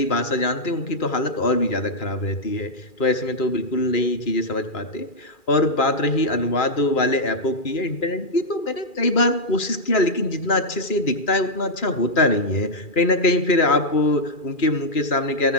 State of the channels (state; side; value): late; right; 2.4 ms